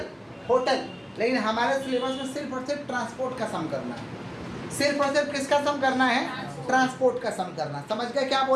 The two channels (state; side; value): identical; both; correlation 1.00